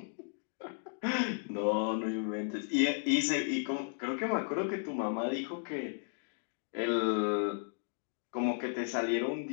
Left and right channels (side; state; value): right; silent; digital silence